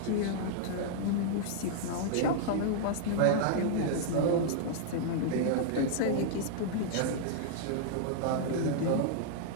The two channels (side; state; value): both; different; correlation -0.02